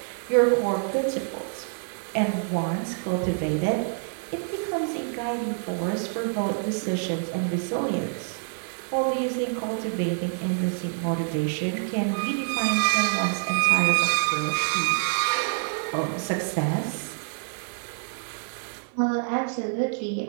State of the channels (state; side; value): silent; left; digital silence